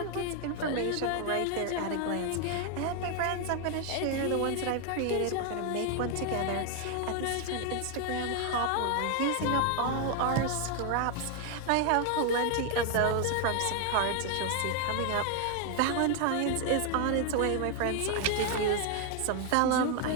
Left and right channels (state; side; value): different; both; correlation 0.01